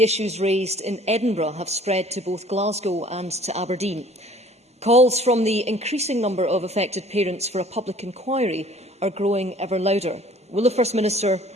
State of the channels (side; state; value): both; normal; correlation 0.53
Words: issues raised in Edinburgh have spread to both Glasgow and to Aberdeen. Calls from the increasing number of affected parents for a public inquiry are growing ever louder. Will the First Minister